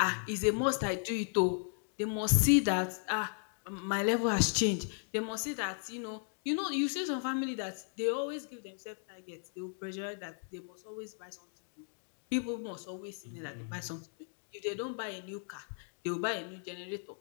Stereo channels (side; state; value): right; silent; 54 dB below the other